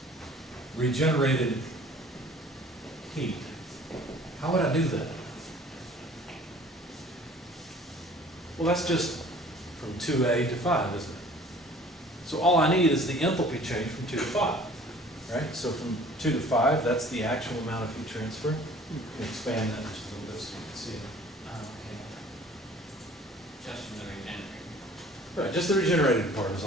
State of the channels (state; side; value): normal; both; correlation 0.51